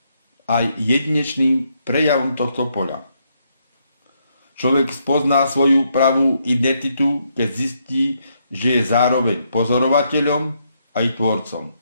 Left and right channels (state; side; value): inverted; both; correlation -0.76